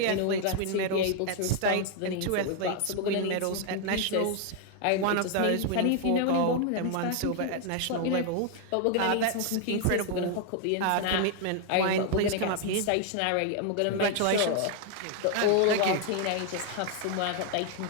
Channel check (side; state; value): both; different; correlation 0.00